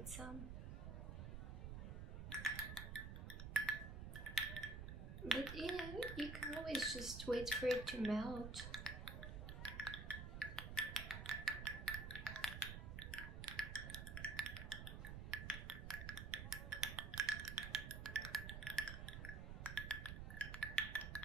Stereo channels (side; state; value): right; noise; rumble, 6 dB below the sound